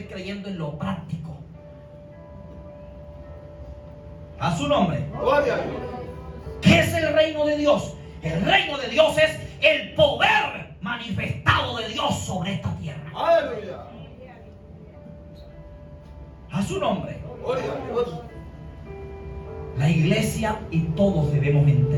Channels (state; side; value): identical; both; correlation 1.00